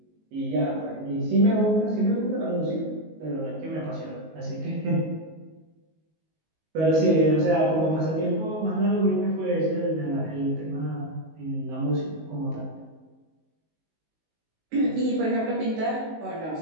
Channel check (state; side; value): late; left; 19 ms